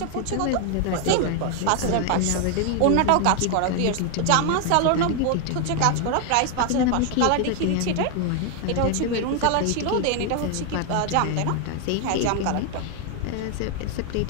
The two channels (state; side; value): different; both; correlation 0.00